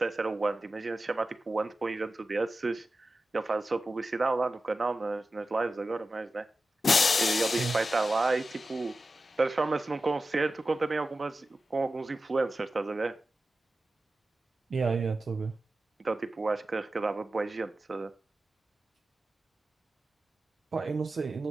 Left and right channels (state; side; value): normal; both; correlation 0.93